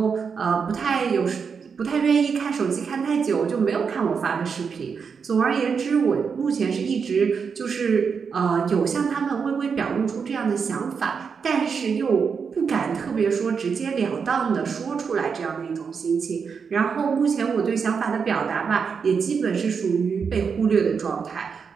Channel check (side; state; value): left; quieter; 6.0 dB